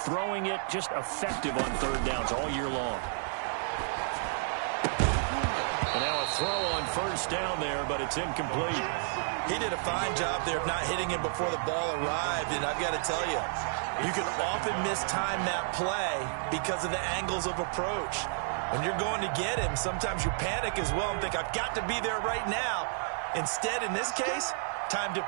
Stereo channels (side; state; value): left; silent; 57 dB below the other